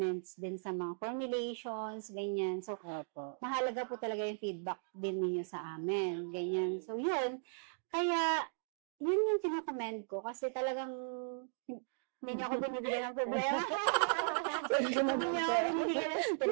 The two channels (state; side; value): silent; left; digital silence